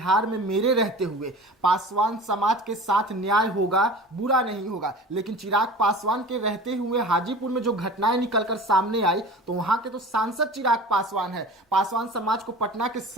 में मेरे रहते हुए पासवान समाज के साथ न्याय होगा, बुरा नहीं होगा, लेकिन चिराग पासवान के रहते हुए हाजीपुर में जो घटनाएं निकलकर सामने आई, तो वहां के तो सांसद चिराग पासवान है। पासवान समाज को पटना के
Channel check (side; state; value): both; normal; correlation 0.39